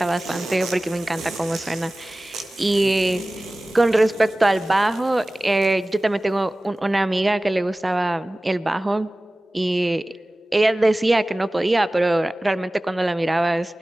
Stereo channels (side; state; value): both; normal; correlation 0.98